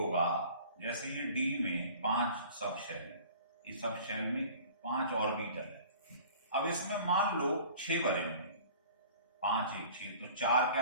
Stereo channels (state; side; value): inverted; both; correlation -0.46